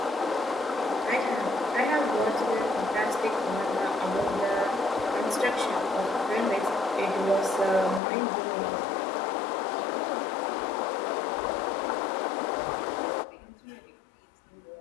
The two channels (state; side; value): drops out; right; at 8.0 s